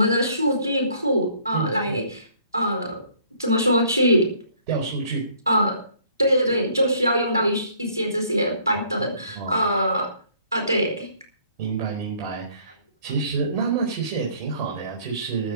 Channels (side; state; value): both; inverted; correlation -0.60